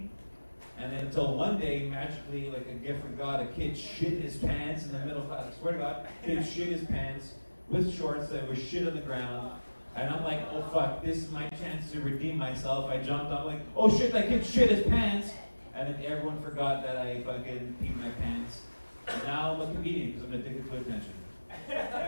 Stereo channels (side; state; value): both; inverted; correlation -1.00